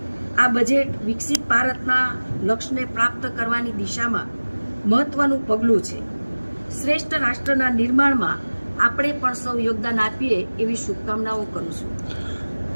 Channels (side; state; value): both; inverted; correlation -1.00